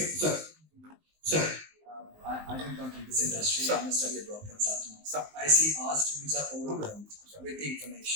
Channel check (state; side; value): late; left; 19 ms